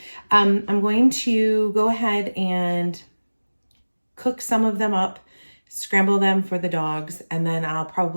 I'm going to go ahead and cook some of them up, scramble them for the dogs, and then I'll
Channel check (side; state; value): both; inverted; correlation -1.00